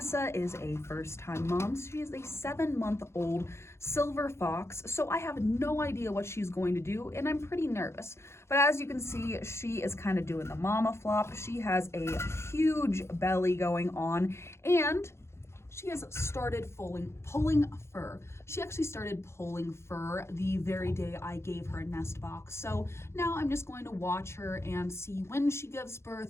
is a first-time mom. She is a 7-month-old silver fox, so I have no idea what she's going to do, and I'm pretty nervous. But as you can see, she is kind of doing the mama flop. She has a huge belly going on, and she has started pulling fur. She actually started pulling fur the very day I gave her a nest box. So now I'm just going to watch her and see when she gives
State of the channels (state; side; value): late; right; 0.13 ms